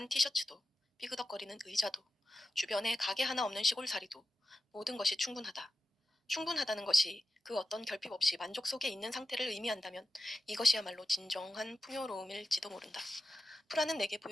티셔츠도, 삐그덕거리는 의자도, 주변에 가게 하나 없는 시골살이도, 모든 것이 충분하다. 충분하다는 것이 그 어떤 결핍 없이 만족 속에 있는 상태를 의미한다면 이것이야말로 진정한 풍요로움일지도 모른다. 프라는 내게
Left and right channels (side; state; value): both; normal; correlation 0.92